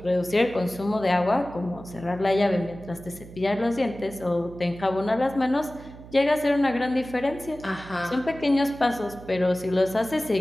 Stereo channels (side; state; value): right; noise; hum, 17 dB below the sound